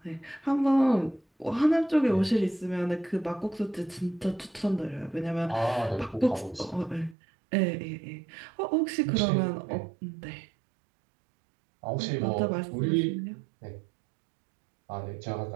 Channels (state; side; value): drops out; left; at 7.2 s